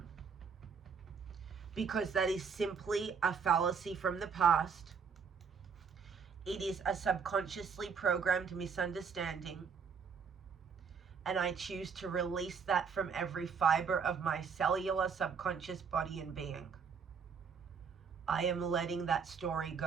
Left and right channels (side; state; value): left; quieter; 6.0 dB